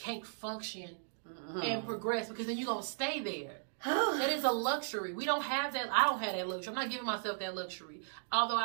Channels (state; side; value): silent; left; digital silence